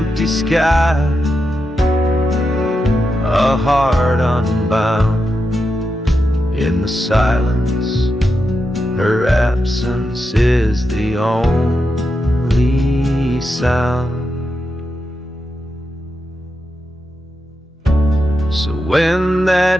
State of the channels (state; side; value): normal; both; correlation 0.87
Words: sky, a heart unbound. In the silence, her absence is the only sound. So when